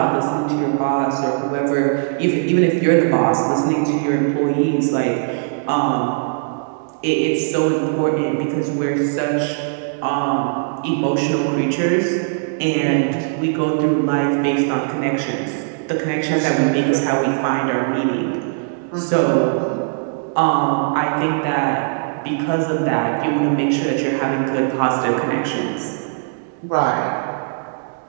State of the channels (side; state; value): left; silent; digital silence